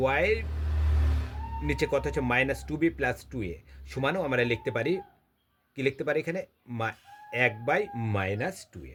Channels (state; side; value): identical; both; correlation 1.00